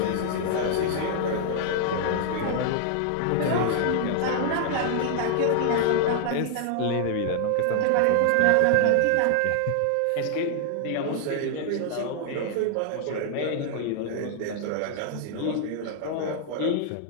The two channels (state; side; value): different; both; correlation -0.01